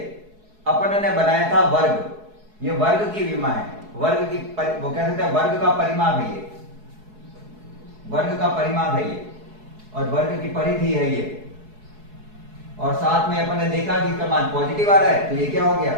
अपन ने बनाया था वर्ग, ये वर्ग की विमा है, वर्ग की वो कह सकते हैं वर्ग का परिमाप है ये, वर्ग का परिमाप है ये, और वर्ग की परिधि है ये। और साथ में अपन ने देखा कि इसका मान पॉजिटिव आ रहा है, तो ये क्या हो गया?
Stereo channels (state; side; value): late; left; 4.7 ms